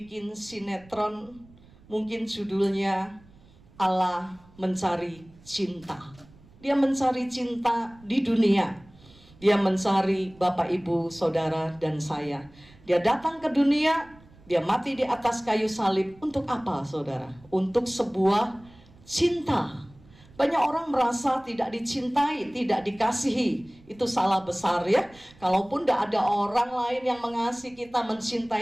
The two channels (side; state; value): right; noise; rumble, 25 dB below the sound